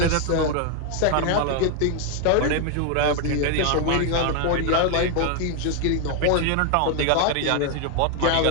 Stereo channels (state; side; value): different; both; correlation 0.00